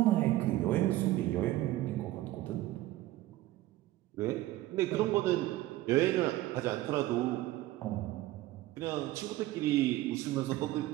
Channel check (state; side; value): quieter; left; 16.1 dB